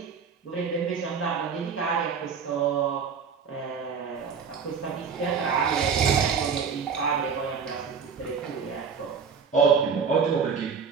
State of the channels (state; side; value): quieter; left; 6.1 dB